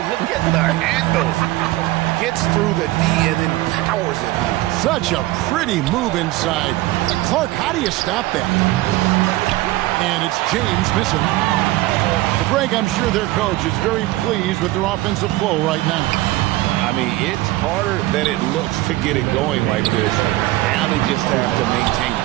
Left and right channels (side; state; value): left; quieter; 17.9 dB